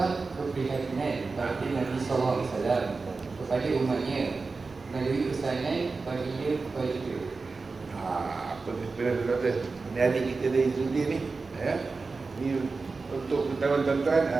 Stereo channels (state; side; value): quieter; left; 4.1 dB